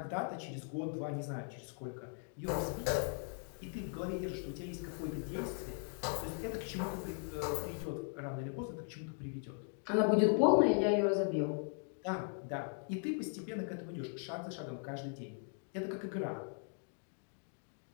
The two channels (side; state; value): right; silent; 52 dB below the other